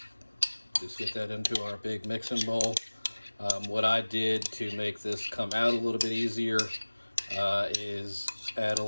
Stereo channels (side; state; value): both; inverted; correlation -1.00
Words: Just get that into our big mixing bowl. What I did to make this come out a little bit easier is add a